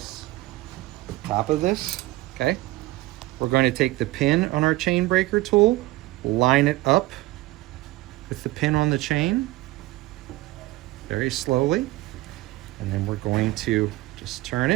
top of this, okay? We're going to take the pin on our chain breaker tool, line it up with the pin on the chain, very slowly, and then we're going to just turn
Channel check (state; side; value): quieter; left; 18.7 dB